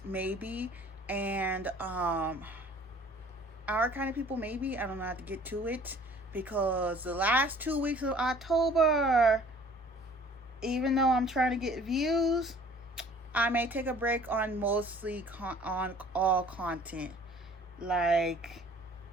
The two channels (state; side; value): normal; both; correlation 0.52